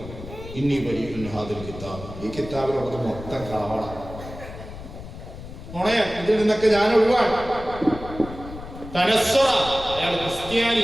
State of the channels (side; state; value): left; noise; rumble, 13 dB below the sound